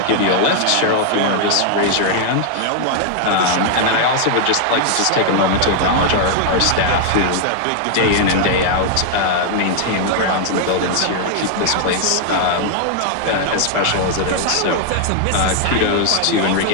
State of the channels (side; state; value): both; different; correlation 0.00